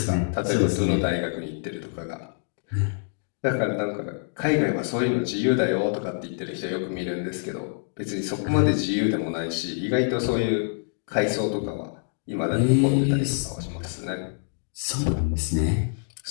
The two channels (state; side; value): silent; right; digital silence